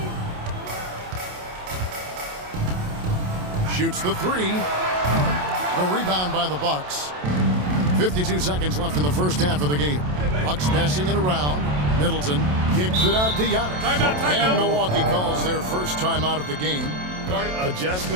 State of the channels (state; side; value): late; left; 27 ms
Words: Shoots the three. The rebound by the Bucks. 52 seconds left in the first half of the game. Bucks passing it around. Middleton kicks it out to Giannis. And Milwaukee calls their first timeout of the game.